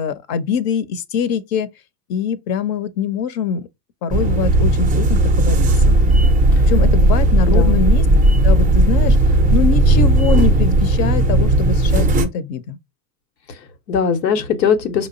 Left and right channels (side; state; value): both; normal; correlation 0.36